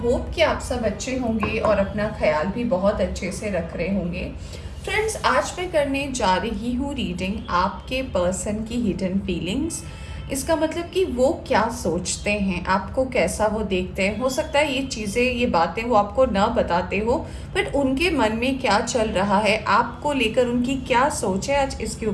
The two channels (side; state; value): both; identical; correlation 1.00